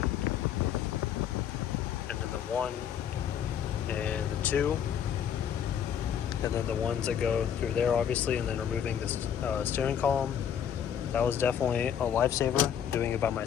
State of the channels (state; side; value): quieter; right; 8.8 dB